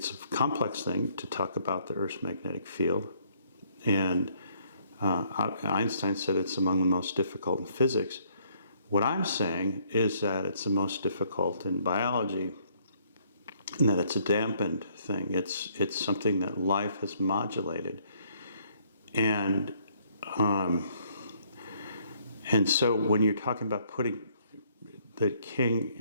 a complex thing to talk about the Earth's magnetic field, and Einstein said it's among the most difficult in physics. What I'm saying is that it's the most difficult in biology, and that it's a dampened thing. It's something that life has modulated, and so when you're talking about putting the king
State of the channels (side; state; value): both; inverted; correlation -0.66